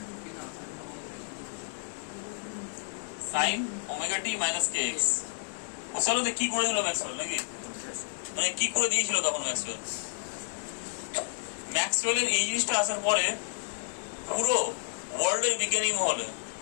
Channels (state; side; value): silent; right; digital silence